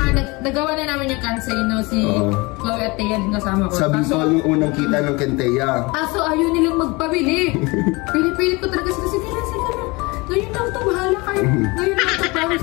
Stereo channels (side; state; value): right; quieter; 25.1 dB